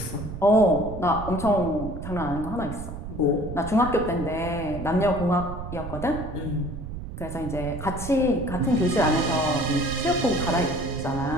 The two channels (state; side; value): noise; right; rumble, 9 dB below the sound